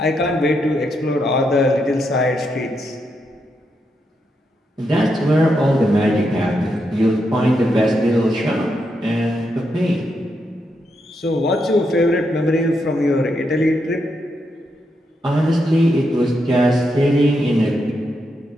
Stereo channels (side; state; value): both; normal; correlation 0.82